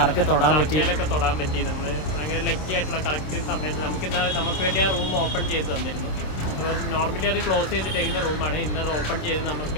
തൊടാൻ പറ്റി. നമ്മൾ ഭയങ്കര ലക്കി ആയിട്ടുള്ള കറക്റ്റ് സമയത്ത് നമുക്ക് വേണ്ടി ആ റൂം ഓപ്പൺ ചെയ്ത് തന്നിരുന്നു. അപ്പോൾ നോർമലി അത് ക്ലോസ് ചെയ്തിട്ടേക്കുന്ന റൂമാണ്. ഇന്നത് ഓപ്പൺ ചെയ്ത്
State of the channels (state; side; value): late; right; 26 ms